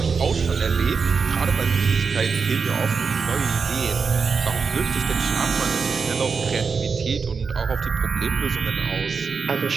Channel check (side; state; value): left; quieter; 5.3 dB